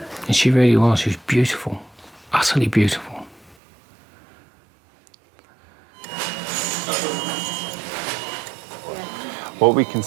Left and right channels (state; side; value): drops out; left; at 3.6 s